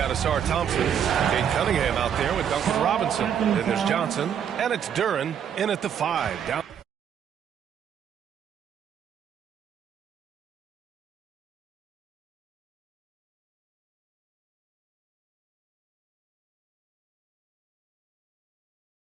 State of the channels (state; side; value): quieter; left; 8.5 dB